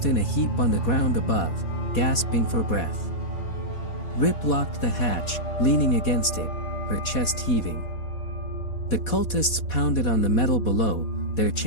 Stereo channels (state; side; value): late; right; 4.2 ms